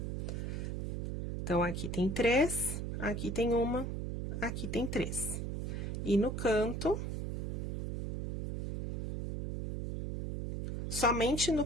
Então, aqui tem 3, aqui tem uma, aqui tem 3. E no canto, somente no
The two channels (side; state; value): right; noise; hum, 2 dB below the sound